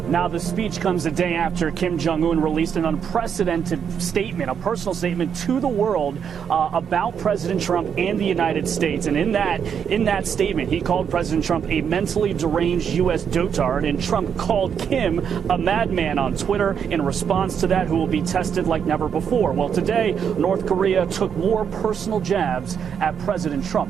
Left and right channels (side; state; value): left; quieter; 7.6 dB